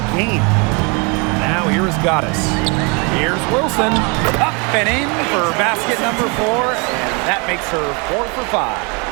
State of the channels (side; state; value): left; quieter; 31.7 dB